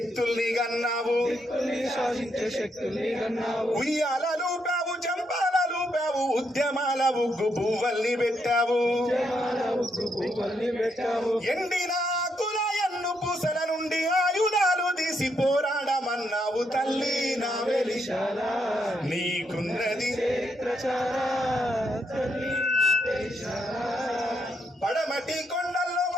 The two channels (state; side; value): normal; both; correlation 0.77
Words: గన్నావు, ఉయ్యాలలు పావు చంపాలలు పావు ఉద్యమాల ఉగ్గు పువ్వల్ని పెట్టావు, ఎండిన ఆకుల ఎన్ను పూసల నుండి ఆయుధాలు తీసి పోరాడమన్నావు, తల్లి నా వెలిశాల నీకున్నది పడమటి కొండల్లో